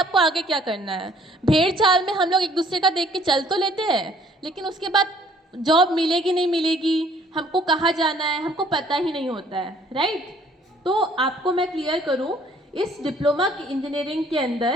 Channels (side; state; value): both; normal; correlation 0.59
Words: आगे क्या करना है। भेड़ चाल में हम लोग एक दूसरे का देख के चल तो लेते हैं, लेकिन उसके बाद जॉब मिलेगी नहीं मिलेगी, हमको कहाँ जाना है, हमको पता ही नहीं होता है, राइट। तो आपको मैं क्लियर करूं, इस डिप्लोमा की इंजीनियरिंग के